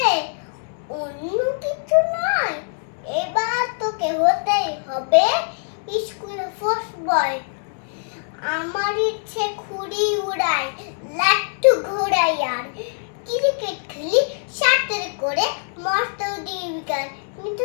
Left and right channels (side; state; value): right; silent; digital silence